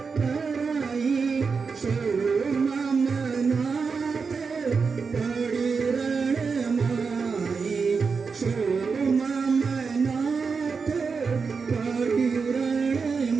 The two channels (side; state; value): left; quieter; 5.1 dB